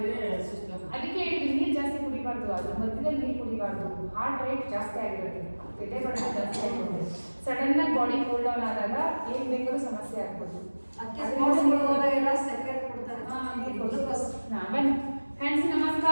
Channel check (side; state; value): both; inverted; correlation -1.00